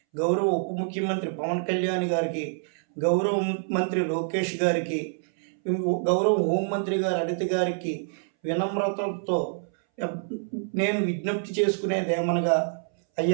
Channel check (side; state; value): left; silent; 60 dB below the other